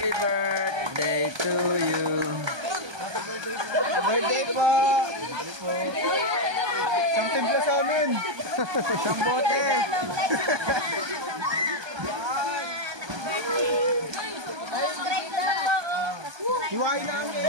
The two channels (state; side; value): late; left; 1.2 ms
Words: birthday to you. Birthday po! Isang timpla sa amin! Isang bote! Hiwain